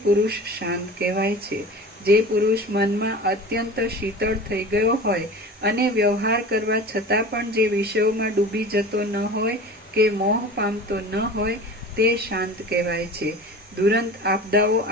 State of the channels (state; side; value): normal; both; correlation 0.37